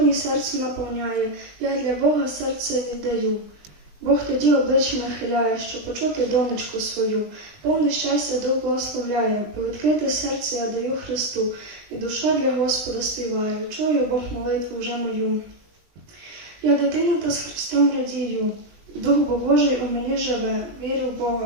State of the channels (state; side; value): late; left; 20 ms